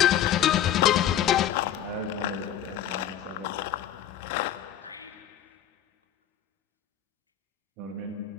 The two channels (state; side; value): quieter; right; 10.8 dB